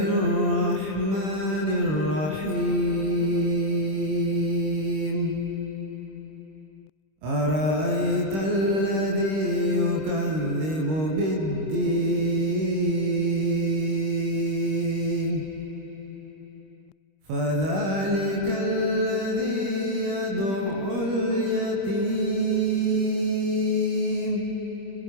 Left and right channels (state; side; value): late; left; 26 ms